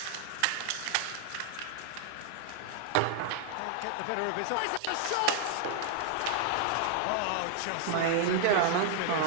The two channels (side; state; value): both; different; correlation 0.00